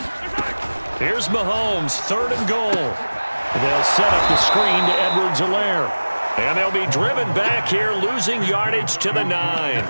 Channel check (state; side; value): inverted; both; correlation -1.00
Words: Here's Mahomes, 3rd and goal. They'll set up the screen to Edwards-Helaire. And they'll be driven back here, losing yardage to the